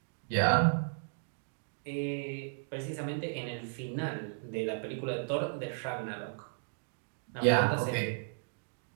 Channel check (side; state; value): left; silent; digital silence